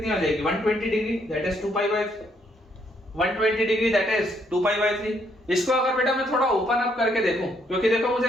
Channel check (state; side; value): normal; both; correlation 0.71